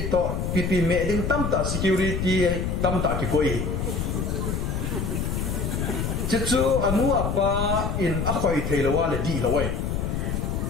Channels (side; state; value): left; noise; rumble, 1 dB below the sound